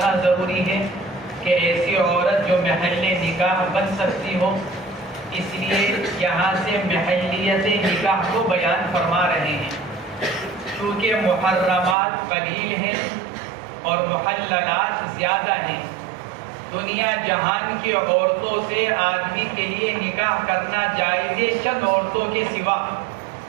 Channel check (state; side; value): drops out; left; at 12.0 s